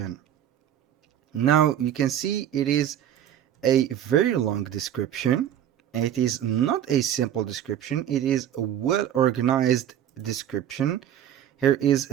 Now you can see it is a very long description. It is not a simple description, it is a well organized description. Here is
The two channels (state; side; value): quieter; left; 10.5 dB